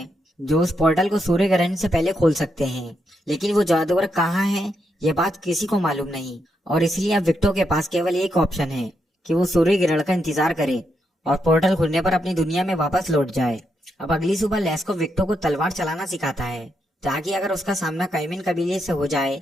जो उस पोर्टल को सूर्य ग्रहण से पहले खोल सकते हैं, लेकिन वो जादूगर कहाँ हैं ये बात किसी को मालूम नहीं। और इसलिए अब विक्टो के पास केवल एक ऑप्शन है कि वो सूर्य ग्रहण का इंतजार करे और पोर्टल खुलने पर अपनी दुनिया में वापस लौट जाए। अब अगली सुबह लेस्को विक्टो को तलवार चलाना सिखाता है ताकि अगर उसका सामना काइमिन कबीले से हो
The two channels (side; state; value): both; normal; correlation 0.81